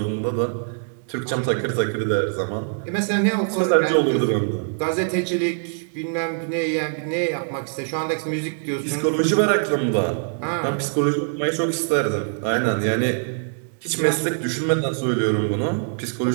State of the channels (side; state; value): left; silent; digital silence